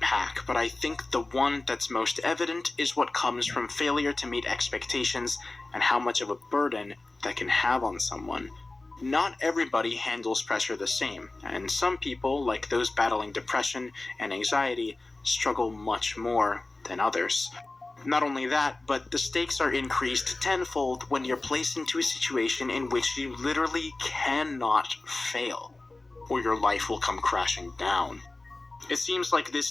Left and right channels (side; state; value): right; quieter; 3.1 dB